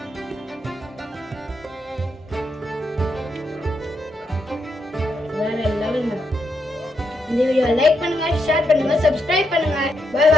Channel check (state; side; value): normal; both; correlation 0.81